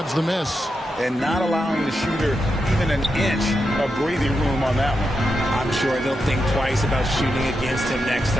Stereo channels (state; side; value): normal; both; correlation 0.86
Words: the miss. And not allowing the shooter even an inch of breathing room on that one. I'm sure they'll think twice about shooting against him next